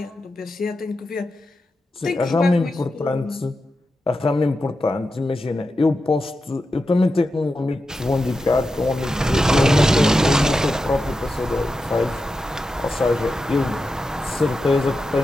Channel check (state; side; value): normal; both; correlation 0.89